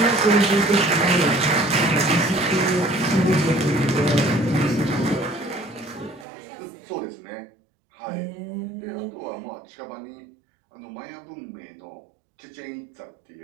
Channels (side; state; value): left; drops out; at 6.2 s